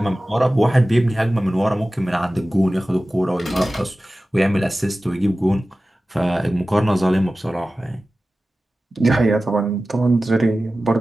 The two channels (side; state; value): both; normal; correlation 0.96